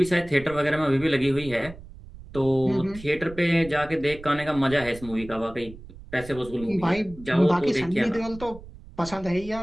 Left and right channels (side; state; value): right; noise; rumble, 17 dB below the sound